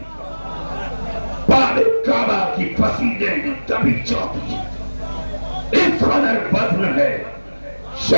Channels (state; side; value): inverted; both; correlation -1.00